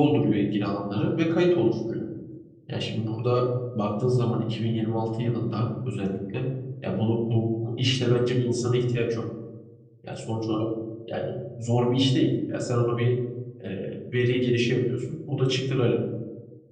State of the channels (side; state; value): both; identical; correlation 1.00